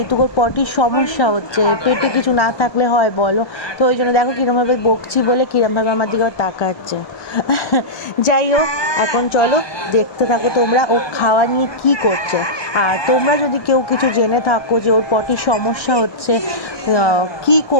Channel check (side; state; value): right; late; 1.2 ms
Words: ওর পটির সমস্যা হচ্ছে, পেটে কিছু না থাকলে হয় বলো। তো ওই জন্য দেখো কীরমভাবে বকছি বলে কীরমভাবে আমার দিকে তাকাচ্ছে। যাই হোক, এখন চলো দেখতে থাকো তোমরা ও খাওয়া নিয়ে কী করছে। আর তোমরা যদি কেউ কিছু জেনে থাকো যে ওর পটির সমস্যা হচ্ছে, কি